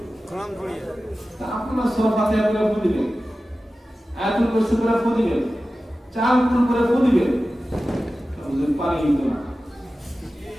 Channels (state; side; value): normal; both; correlation 0.95